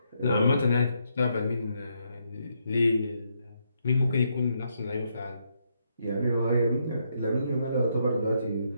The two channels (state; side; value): inverted; both; correlation -0.77